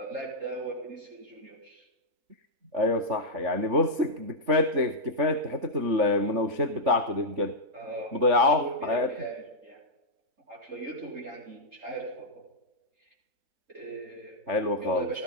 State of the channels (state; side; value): late; left; 3.5 ms